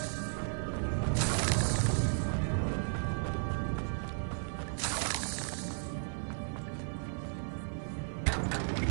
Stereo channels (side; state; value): left; silent; 55 dB below the other